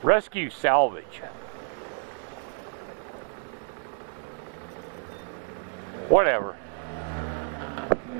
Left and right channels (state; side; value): silent; left; digital silence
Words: Rescue salvage. Whatever.